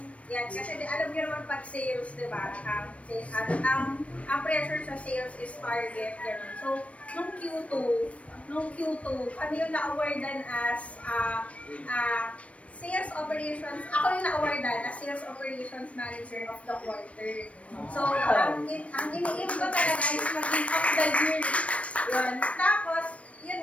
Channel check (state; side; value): late; right; 0.063 ms